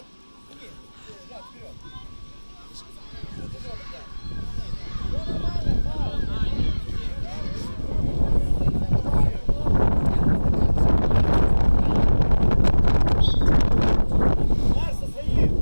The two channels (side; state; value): both; inverted; correlation -1.00